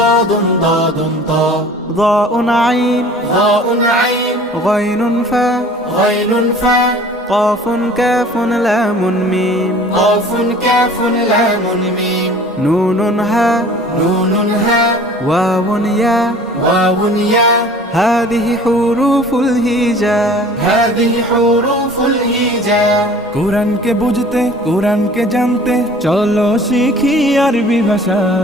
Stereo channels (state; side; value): normal; both; correlation 0.47